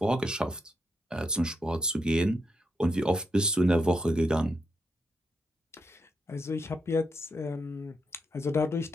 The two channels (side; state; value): both; normal; correlation 0.81